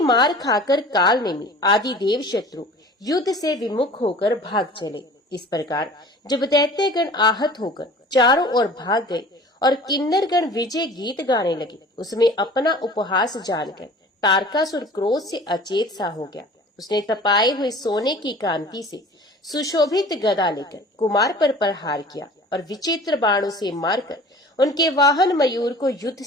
मार खाकर काल नेमी आदि देव शत्रु युद्ध से विमुख होकर भाग चले। इस प्रकार जब दैत्यगण आहत होकर चारों ओर भाग गए और किन्नरगण विजय गीत गाने लगे, उसमें अपना उपहास जानकर तारकासुर क्रोध से अचेत सा हो गया। उसने तपाए हुए सोने की कांति से सुशोभित गदा लेकर कुमार पर प्रहार किया और विचित्र बाणों से मारकर उनके वाहन मयूर को युद्ध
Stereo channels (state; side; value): normal; both; correlation 0.44